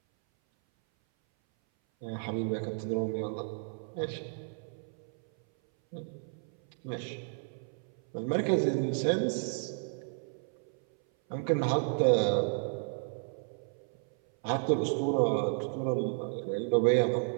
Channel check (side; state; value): left; silent; 56 dB below the other